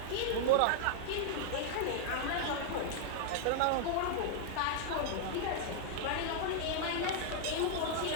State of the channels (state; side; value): different; both; correlation -0.01